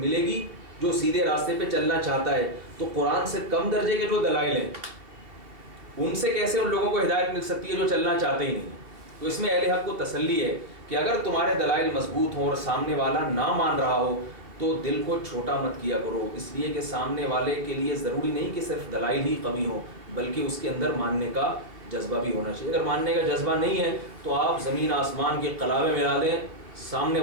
گی جو سیدھے راستے پہ چلنا چاہتا ہے، تو قرآن سے کم درجے کے جو دلائل ہیں ان سے کیسے ان لوگوں کو ہدایت مل سکتی ہے جو چلنا چاہتے ہی نہیں؟ تو اس میں اہل حق کو تسلی ہے کہ اگر تمہارے دلائل مضبوط ہوں اور سامنے والا نہ مان رہا ہو تو دل کو چھوٹا مت کیا کرو، اس لیے کہ سامنے والے کے لیے ضروری نہیں کہ صرف دلائل ہی قوی ہوں بلکہ اس کے اندر ماننے کا جذبہ بھی ہونا چاہیے۔ اگر ماننے کا جذبہ نہیں ہے تو آپ زمین آسمان کے قلابے ملا دیں، سامنے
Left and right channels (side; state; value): left; late; 2.8 ms